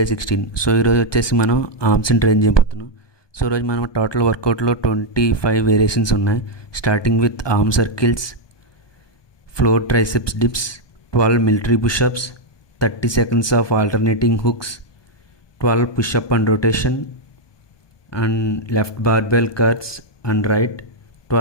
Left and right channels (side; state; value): right; late; 1.2 ms